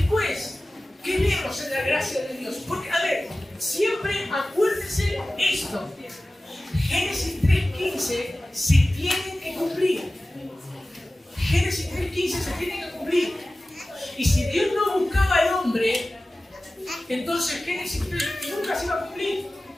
¿qué vemos en la gracia de Dios? Porque, a ver, siempre acuérdense esto. Génesis 3.15 se tiene que cumplir. Génesis 3.15 se tiene que cumplir. Y si Dios no buscaba al hombre, entonces Génesis 3 nunca se iba a cumplir.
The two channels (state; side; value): normal; both; correlation 0.96